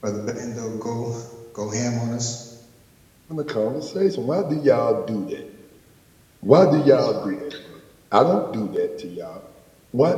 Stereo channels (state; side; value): identical; both; correlation 1.00